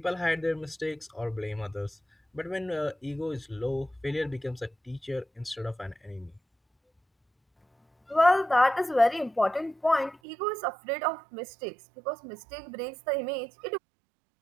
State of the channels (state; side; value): drops out; left; at 10.2 s